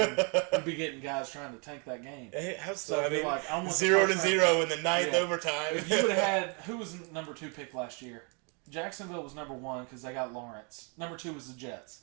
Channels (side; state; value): left; quieter; 35.2 dB